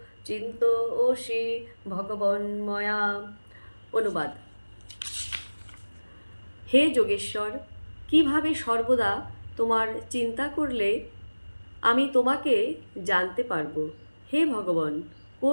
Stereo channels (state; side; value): inverted; both; correlation -1.00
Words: চিন্তয়সি ভগবন্ময়া। অনুবাদ: হে যোগেশ্বর, কিভাবে সর্বদা তোমার চিন্তা করলে আমি তোমাকে জানতে পারব। হে ভগবান,